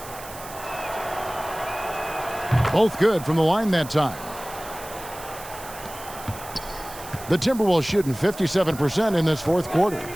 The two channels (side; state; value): right; noise; hiss, 15 dB below the sound